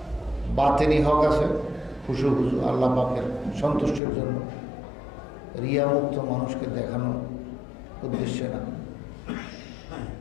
বাতিনি হক আছে খুশু খুশু আল্লাহ পাকের সন্তুষ্টির জন্য, রিয়ামুক্ত মানুষকে দেখানোর উদ্দেশ্যে না।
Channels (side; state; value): right; drops out; at 4.0 s